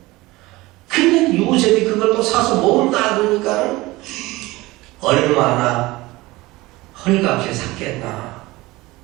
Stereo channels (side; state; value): left; quieter; 20.3 dB